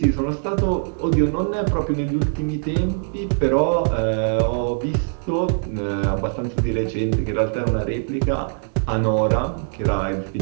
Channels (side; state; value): left; silent; 64 dB below the other